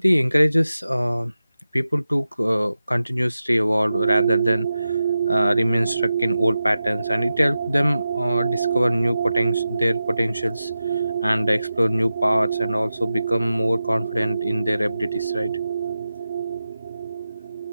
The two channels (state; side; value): inverted; both; correlation -0.92